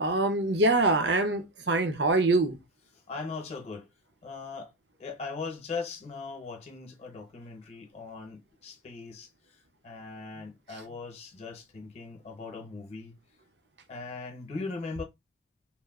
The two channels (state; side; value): normal; both; correlation 0.13